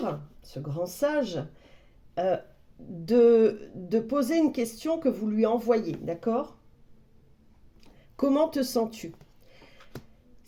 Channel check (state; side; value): identical; both; correlation 1.00